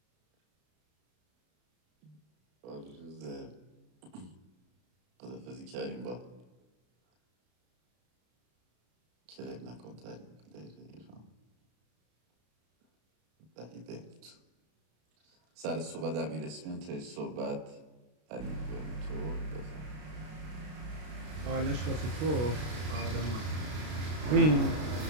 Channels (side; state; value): left; late; 33 ms